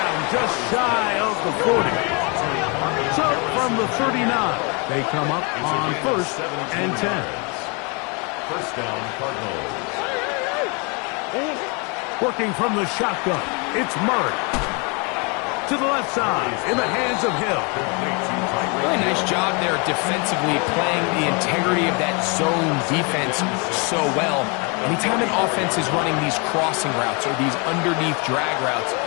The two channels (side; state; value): right; quieter; 32.4 dB